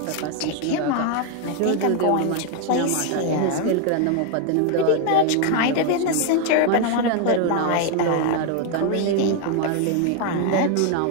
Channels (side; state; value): both; different; correlation 0.01